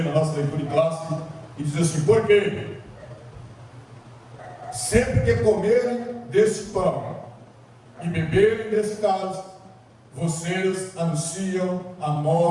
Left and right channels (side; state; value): both; identical; correlation 1.00